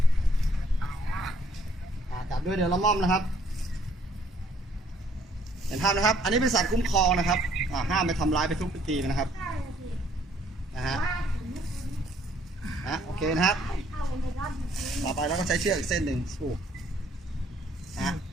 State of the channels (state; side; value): normal; both; correlation 0.64